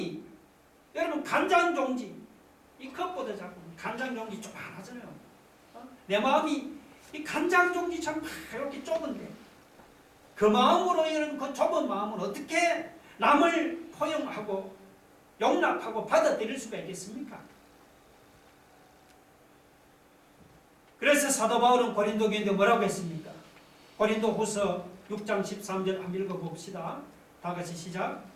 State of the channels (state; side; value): identical; both; correlation 1.00